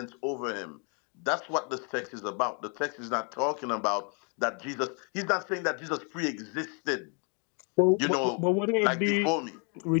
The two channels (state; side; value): quieter; right; 36.2 dB